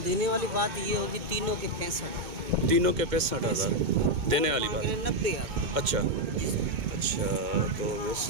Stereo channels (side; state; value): left; late; 2.2 ms